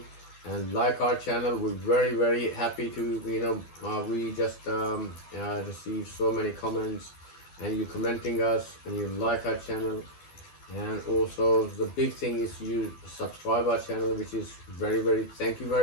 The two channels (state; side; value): late; right; 12 ms